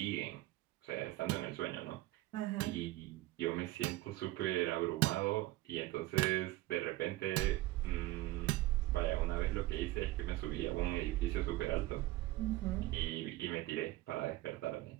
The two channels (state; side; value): quieter; left; 17.8 dB